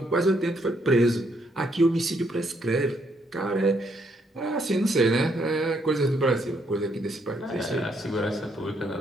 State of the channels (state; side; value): normal; both; correlation 0.73